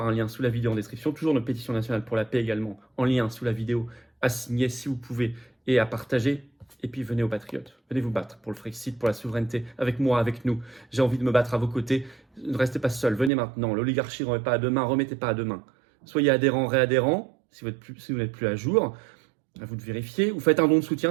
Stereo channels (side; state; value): left; drops out; at 13.3 s